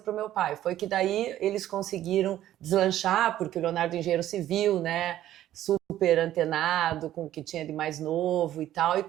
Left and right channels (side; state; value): left; quieter; 12.9 dB